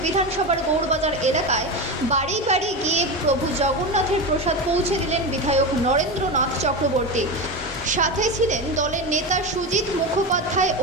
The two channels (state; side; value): normal; both; correlation 0.20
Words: বিধানসভার গৌড়বাজার এলাকায় বাড়ি বাড়ি গিয়ে প্রভু জগন্নাথের প্রসাদ পৌঁছে দিলেন বিধায়ক নরেন্দ্রনাথ চক্রবর্তী। সাথে ছিলেন দলের নেতা সুজিত মুখোপাধ্যায়